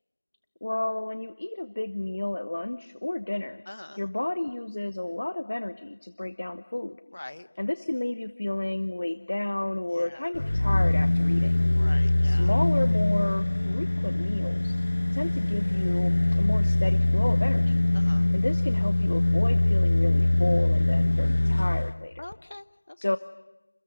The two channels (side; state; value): both; inverted; correlation -1.00